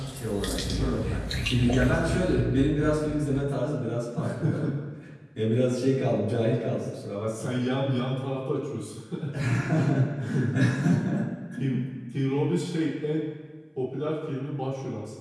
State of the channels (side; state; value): both; identical; correlation 1.00